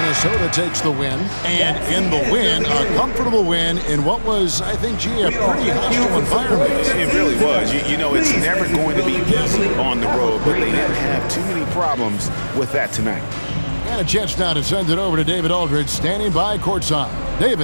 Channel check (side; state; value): both; inverted; correlation -1.00